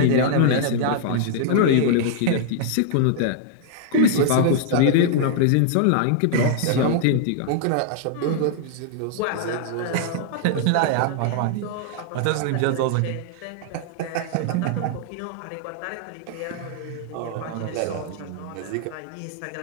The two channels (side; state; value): both; different; correlation -0.01